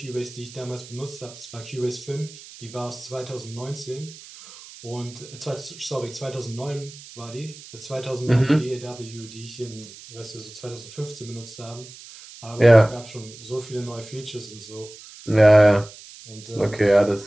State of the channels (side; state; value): right; noise; hiss, 17 dB below the sound